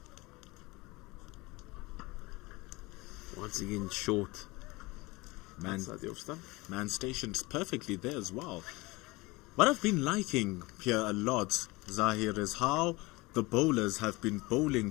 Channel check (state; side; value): quieter; right; 22.8 dB